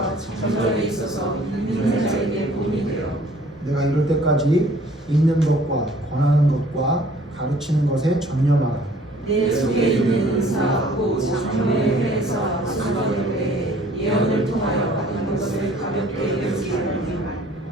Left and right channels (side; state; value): both; normal; correlation 0.55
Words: 전절에 있어서 믿는 자에게 본이 되어 내가 이럴 때까지 읽는 것과 권하는 것과 가르치는 것에 전념하라. 내 속에 있는 은사 곧 장로회에서 약속받을 때에 예언을 통하여 받은 것을 가볍게 여기지 말라.